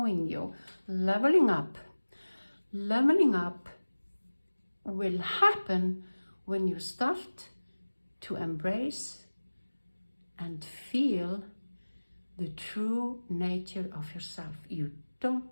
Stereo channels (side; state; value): both; inverted; correlation -1.00